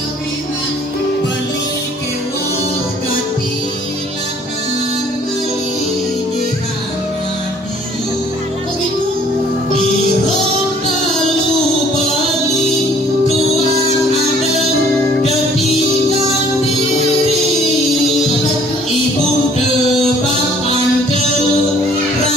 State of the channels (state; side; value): normal; both; correlation 0.57